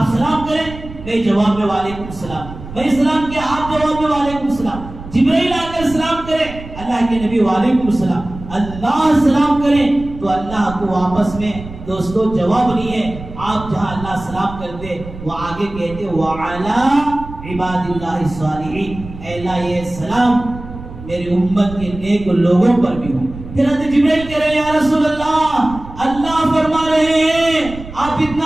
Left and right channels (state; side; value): noise; right; rumble, 14 dB below the sound